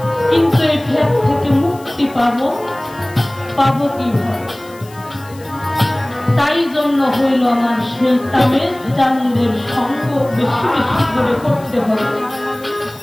কিন্তু এই ফের থেকে মুক্তি পাবো কিভাবে? তাই জন্য হইল আমার সেই তামের চাঁদের সঙ্গ বেশি বেশি করে করতে হবে।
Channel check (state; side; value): noise; left; hiss, 23 dB below the sound